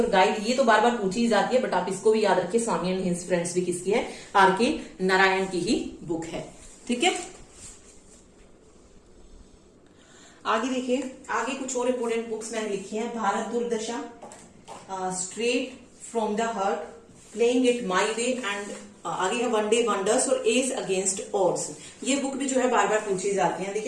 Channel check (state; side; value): identical; both; correlation 1.00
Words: गाइड, ये तो बार बार पूछी जाती है, बट आप इसको भी याद रखिए, स्वामी एंड हिज फ्रेंड्स भी किसकी है? आर.के. नारायण की ही बुक है। ठीक है, आगे देखिए, आगे कुछ और इंपोर्टेंट बुक्स मैंने लिखी है। भारत दुर्दशा, straight from the heart, playing it my way and आगे है वन डे वंडर्स और एज अगेंस्ट ऑड्स। ये बुक भी जो है बार बार पूछी जाती है।